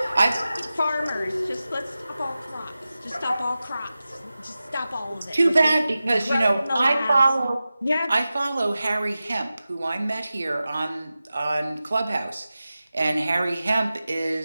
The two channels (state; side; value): inverted; both; correlation -0.94